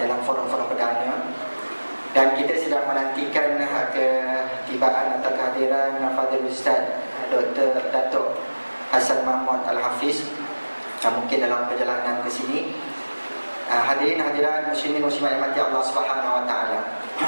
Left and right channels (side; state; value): both; inverted; correlation -1.00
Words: dalam forum-forum perdana. Dan kita sedang menantikan ketibaan atau kehadiran Fadil Ustaz Dr. Datuk Hassan Mahmud Al-Hafiz, mungkin dalam perjalanan ke sini. Hadirin hadirat muslimin muslimat yang Allah Subhanahu wa taala.